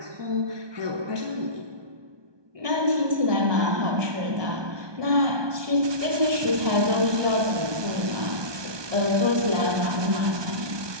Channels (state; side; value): late; left; 1.2 ms